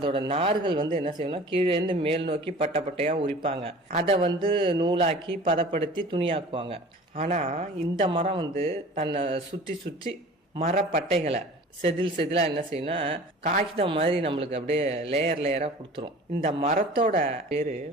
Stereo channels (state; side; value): normal; both; correlation 0.43